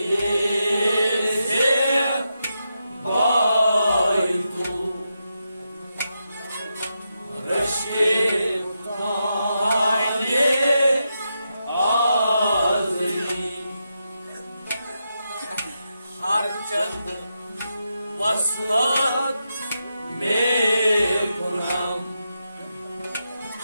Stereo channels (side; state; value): both; inverted; correlation -0.86